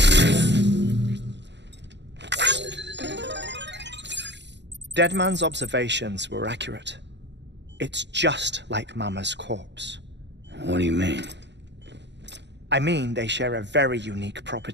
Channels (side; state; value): left; late; 0.51 ms